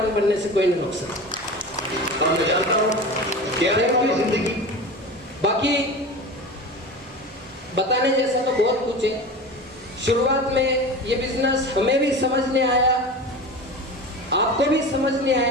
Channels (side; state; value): both; normal; correlation 0.31